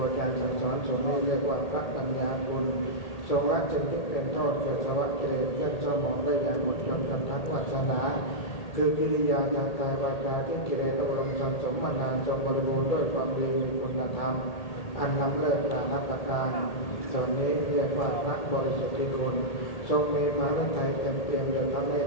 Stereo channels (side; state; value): right; late; 1.8 ms